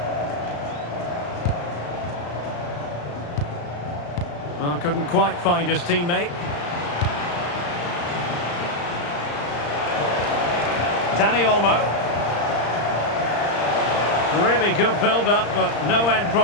Well, couldn't quite find his teammate. Dani Olmo. Really good build-up, but no end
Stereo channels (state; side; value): late; right; 35 ms